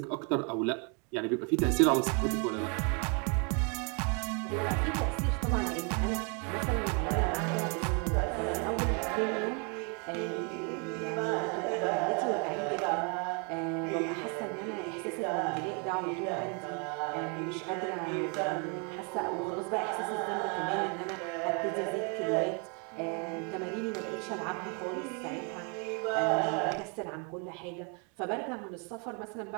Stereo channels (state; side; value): quieter; left; 35.7 dB